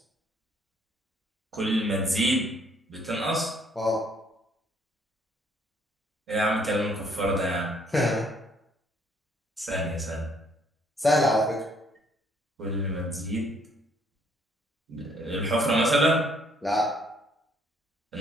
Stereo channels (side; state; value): both; normal; correlation 0.65